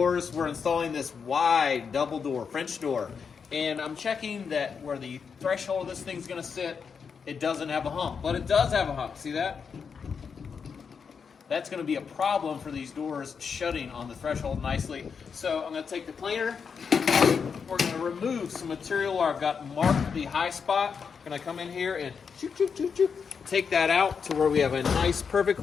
We're installing this wide double door, French door. And I'm checking that where the threshold of this thing's gonna sit, it doesn't have a hump, but it does have a hump. See that? That's gonna be a problem for these doors shutting on the threshold nicely. So I'm gonna take the planer. We're gonna remove some material where I've got marked the high spot. I'm gonna come in here and take that out to where we have a nice,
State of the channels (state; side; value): quieter; right; 6.1 dB